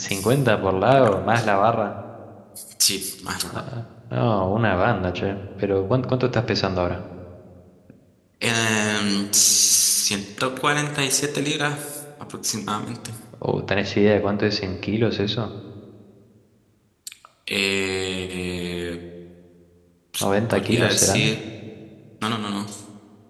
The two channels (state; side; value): identical; both; correlation 1.00